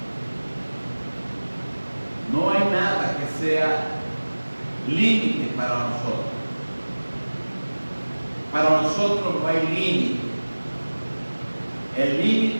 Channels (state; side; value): inverted; both; correlation -1.00